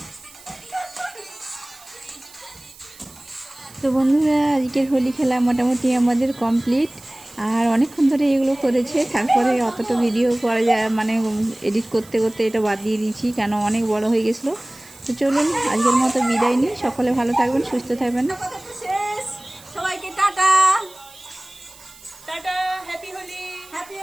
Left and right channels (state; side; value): noise; right; hiss, 22 dB below the sound